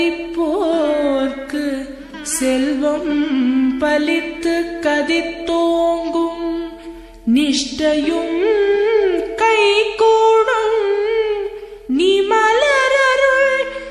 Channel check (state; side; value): identical; both; correlation 1.00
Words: செல்வம் பலித்து கதித்தோங்கும் நிஷ்டையும் கைகூடும் நீ மலரருள்